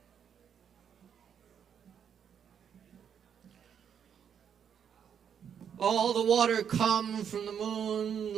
All the water come from the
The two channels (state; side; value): quieter; left; 8.0 dB